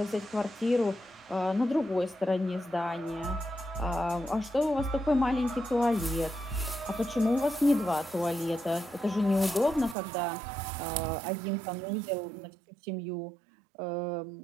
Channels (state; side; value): drops out; left; at 10.0 s